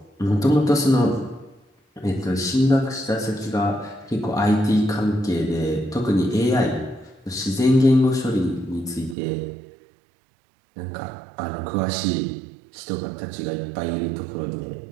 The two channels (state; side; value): drops out; left; at 9.2 s